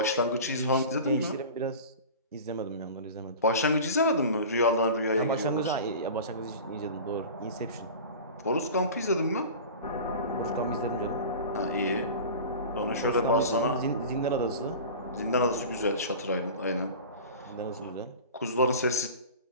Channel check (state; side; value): inverted; both; correlation -0.35